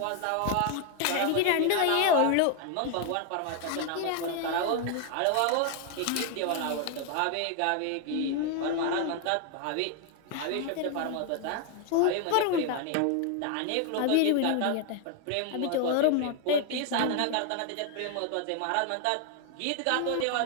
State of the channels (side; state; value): both; different; correlation 0.00